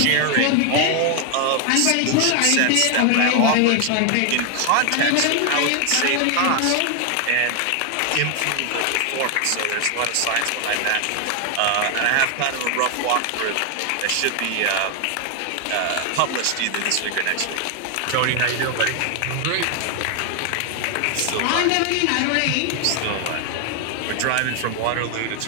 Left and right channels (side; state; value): both; different; correlation 0.00